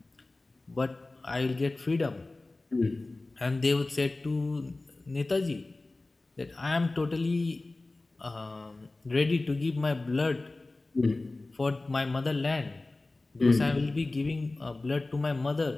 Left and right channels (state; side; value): quieter; right; 3.1 dB